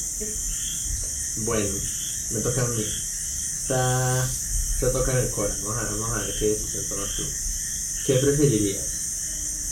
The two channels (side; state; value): both; identical; correlation 1.00